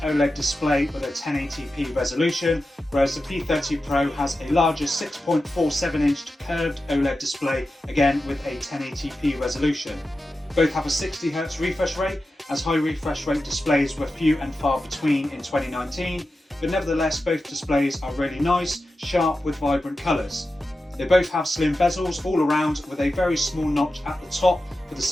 display with a 1080p resolution, whereas the P30 Pro has a larger 6.47-inch curved OLED display, again with a 1080p resolution. Both have a 60Hz refresh rate, as high refresh rate displays were few and far between in 2019, but nevertheless both displays are really nice, sharp with vibrant colours. They both have slim bezels all around, with a very small notch at the top for the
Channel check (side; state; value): both; normal; correlation 0.92